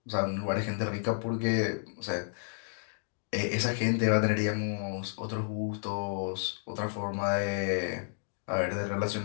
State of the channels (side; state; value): right; silent; digital silence